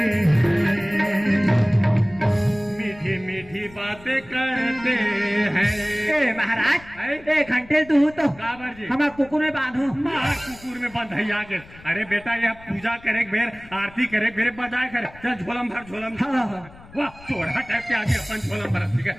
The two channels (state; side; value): noise; left; rumble, 22 dB below the sound